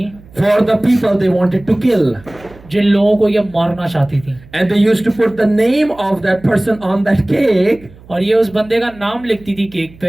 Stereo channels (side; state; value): right; noise; hum, 23 dB below the sound